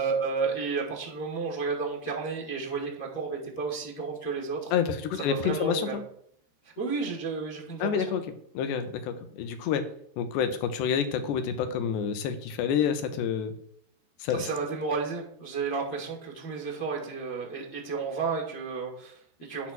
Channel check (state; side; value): late; right; 14 ms